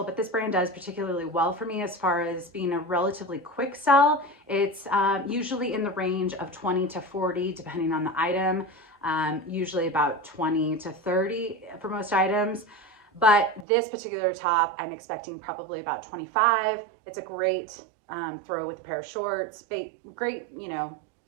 but this brand does particularly well for me as far as being a relatively quick sell. It's usually in the range of 20 to 40, depending on the item, usually about 20 to 30 for most items. But this particular top, I'm expecting probably about 25. It's a great throw with a pair of shorts. Great, you know,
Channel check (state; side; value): drops out; left; at 13.7 s